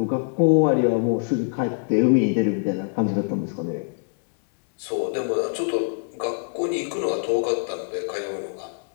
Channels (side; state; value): right; silent; digital silence